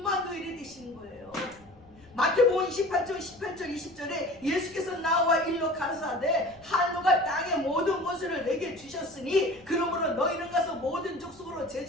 되시는 거예요. 마태복음 28장 18절 20절에 예수께서 나와 일러 가라사대 하늘과 땅의 모든 것을 내게 주셨으니 그러므로 너희는 가서 모든 족속으로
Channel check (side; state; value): left; noise; rumble, 26 dB below the sound